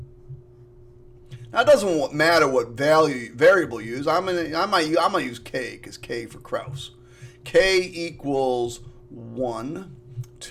Now it doesn't matter what variable you use. I might use k because k for Krause. K equals 1,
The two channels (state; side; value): identical; both; correlation 1.00